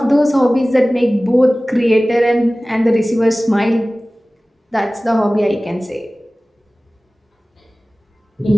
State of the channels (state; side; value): normal; both; correlation 0.98